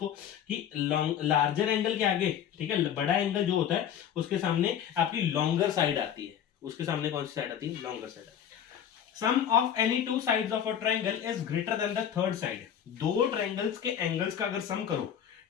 कि लार्जर एंगल के आगे, ठीक है, बड़ा एंगल जो होता है उसके सामने आपकी लॉन्गर साइड आती है, उसके सामने कौन सी साइड आती है, लॉन्गर साइड आती है। Sum of any two sides of a triangle is greater than the third side, दो ट्रायंगल्स के एंगल्स का अगर सम करो,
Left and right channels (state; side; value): quieter; right; 9.3 dB